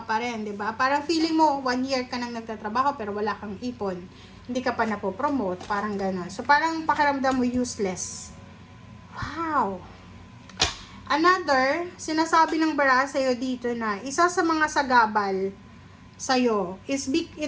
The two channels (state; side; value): identical; both; correlation 1.00